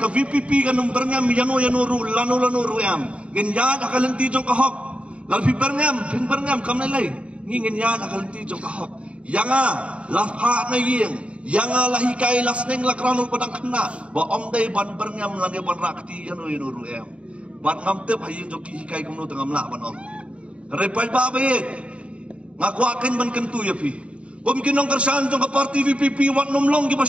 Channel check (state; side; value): late; left; 0.061 ms